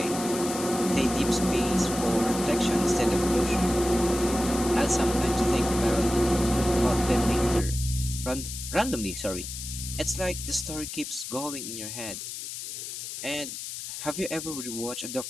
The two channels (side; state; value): left; noise; hiss, 8 dB below the sound